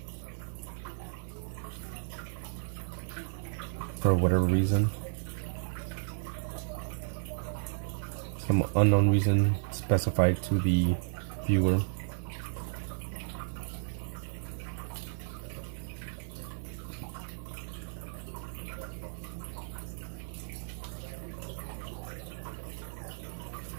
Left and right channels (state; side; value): silent; left; 55 dB below the other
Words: for whatever reason, some unknown reason specified to the viewer.